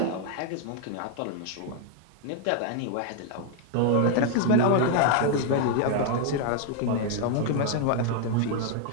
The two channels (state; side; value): different; both; correlation 0.00